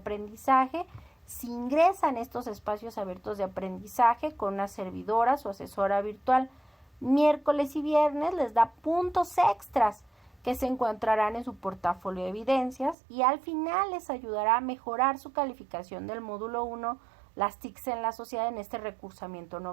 si ingresan estos espacios abiertos de aprendizaje con una servidora o asesora virtual miércoles y viernes, les da puntos extras que se encontrarán en su portafolio de evidencias y al final les ayudará a mejorar su calificación del módulo 1, las TICs en la sociedad en este recursamiento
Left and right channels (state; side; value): drops out; left; at 13.0 s